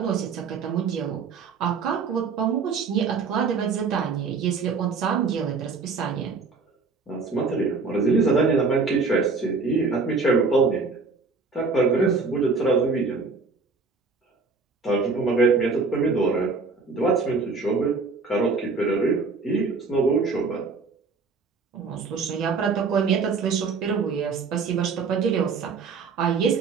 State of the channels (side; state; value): left; quieter; 4.5 dB